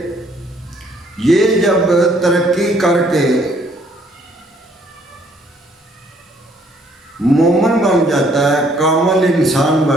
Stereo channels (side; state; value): both; normal; correlation 0.64